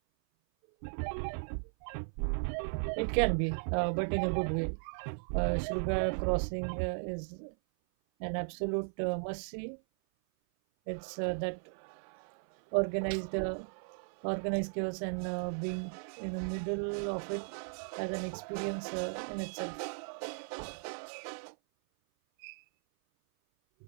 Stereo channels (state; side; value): silent; left; 54 dB below the other